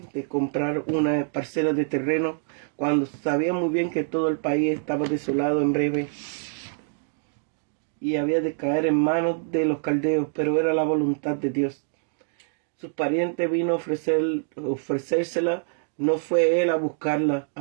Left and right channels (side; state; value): left; silent; digital silence